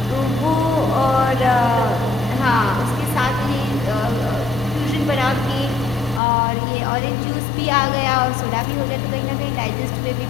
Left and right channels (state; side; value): drops out; right; at 6.2 s